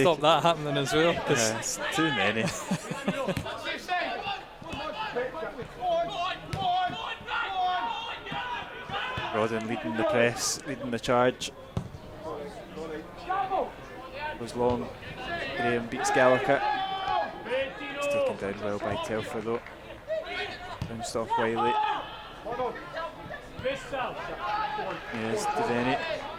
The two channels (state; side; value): identical; both; correlation 1.00